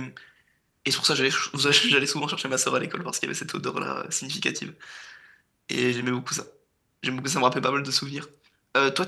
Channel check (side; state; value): both; identical; correlation 1.00